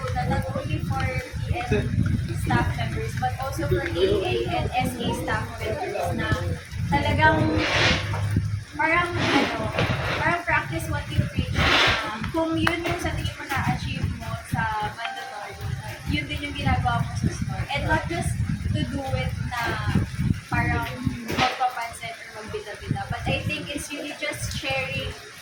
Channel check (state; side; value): identical; both; correlation 1.00